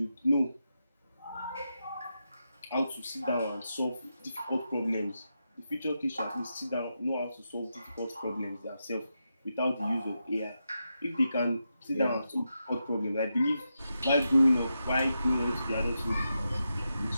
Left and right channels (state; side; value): inverted; both; correlation -0.87